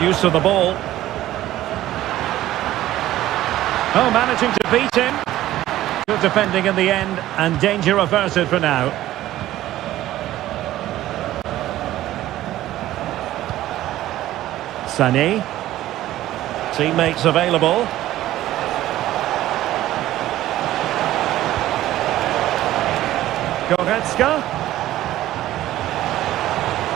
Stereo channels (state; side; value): quieter; left; 14.4 dB